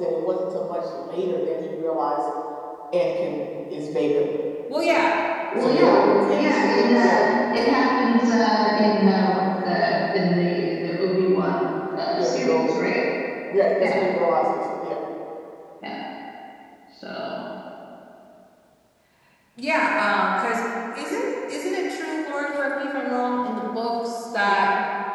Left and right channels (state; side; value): identical; both; correlation 1.00